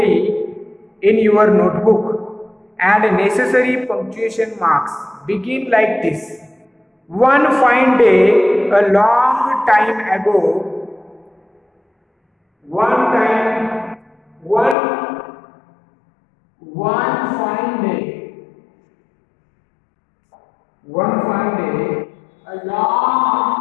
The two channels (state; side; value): drops out; right; at 14.8 s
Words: in your notebook. Add necessary punctuation marks. Begin like this. One fine day, a long time ago. One fine day. One fine day, a long